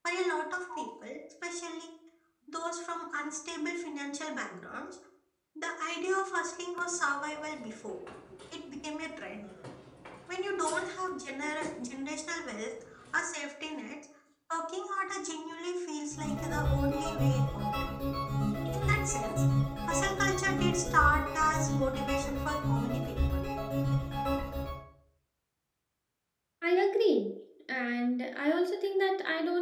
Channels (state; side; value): identical; both; correlation 1.00